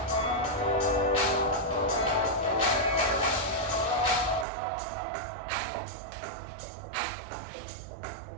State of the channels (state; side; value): drops out; left; at 4.5 s